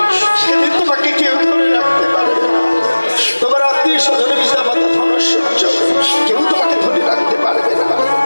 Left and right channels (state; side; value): inverted; both; correlation -1.00